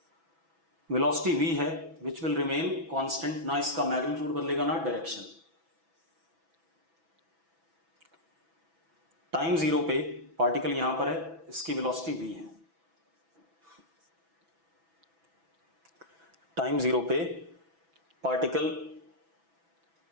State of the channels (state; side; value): late; left; 6.1 ms